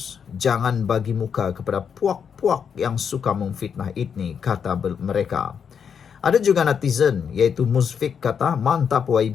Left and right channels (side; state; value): right; quieter; 7.1 dB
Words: jangan bagi muka kepada puak-puak yang suka memfitnah ini, kata mereka. Ada juga netizen, iaitu Musfik, kata, mantap